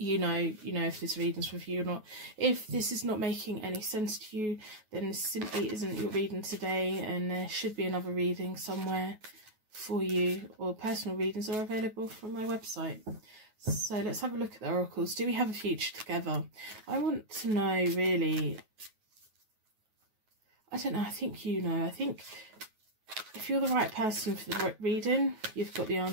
know if this reading's for you or not. If this is not making any sense to you, then this simply isn't your reading today, and there should be another reading somewhere for you, or personal readings are available from my website. So let's have a look at the oracles. Do we have a future together? I want to know, really. I don't know. I think you know. I think if you're the right person for the reading, you've got the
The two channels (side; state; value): left; late; 9.4 ms